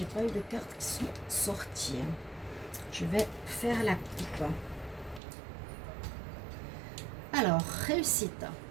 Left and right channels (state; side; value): drops out; left; at 5.2 s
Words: pas eu de cartes qui sont sorties. Je vais faire la coupe. Alors, réussite.